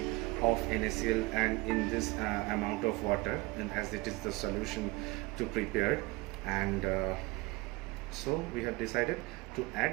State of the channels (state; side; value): quieter; left; 22.7 dB